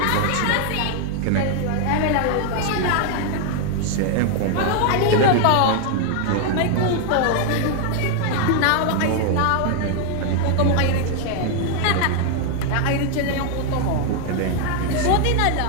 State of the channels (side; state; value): both; different; correlation 0.00